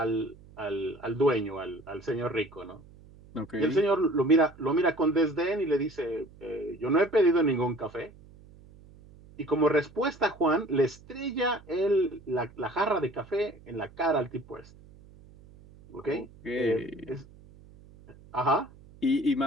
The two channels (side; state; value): right; noise; hum, 23 dB below the sound